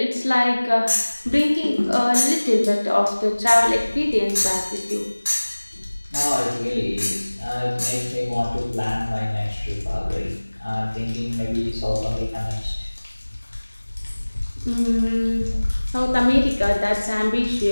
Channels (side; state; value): both; inverted; correlation -1.00